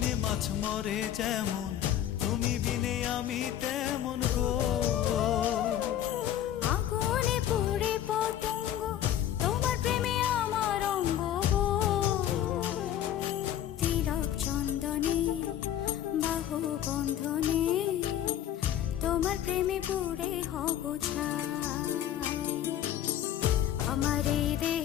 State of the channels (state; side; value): quieter; right; 11.2 dB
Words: মাছ মরে যেমন, তুমি বিনে আমি তেমন গো। আগুনে পুড়ে পতঙ্গ, তোমার প্রেমে আমার অঙ্গ গো। তিলক চন্দনে বাহু বন্ধনে, তোমার প্রেমে পুড়ে হব ছাই। আমার এই